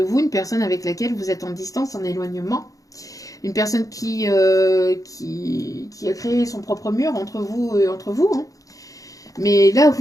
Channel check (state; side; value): late; right; 0.17 ms